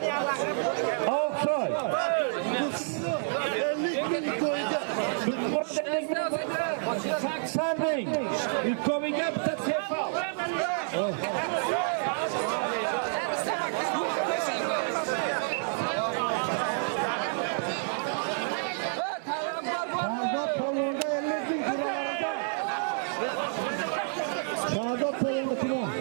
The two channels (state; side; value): silent; left; digital silence